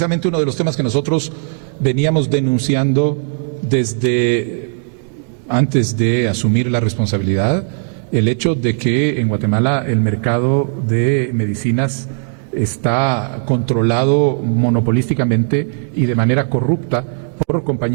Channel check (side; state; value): left; silent; digital silence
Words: uno de los temas que nosotros veníamos denunciando desde antes de asumir la responsabilidad, el hecho de que en Guatemala el mercado de medicinas está controlado monopolísticamente y de manera corrupta por